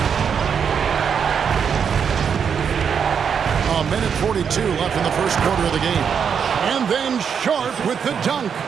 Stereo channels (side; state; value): left; quieter; 7.1 dB